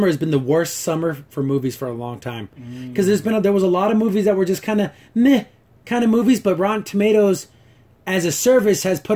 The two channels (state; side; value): identical; both; correlation 1.00